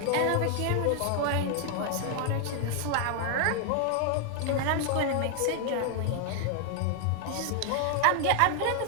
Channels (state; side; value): different; both; correlation 0.00